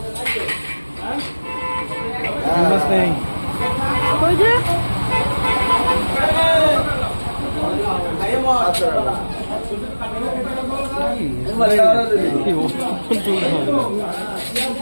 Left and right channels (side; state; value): both; inverted; correlation -1.00